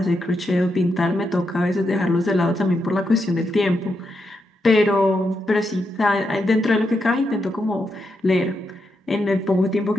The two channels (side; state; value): both; normal; correlation 0.83